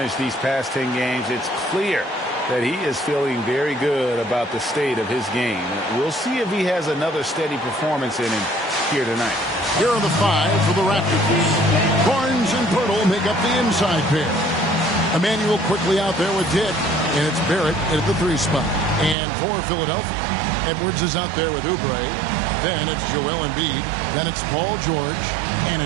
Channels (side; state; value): left; drops out; at 19.2 s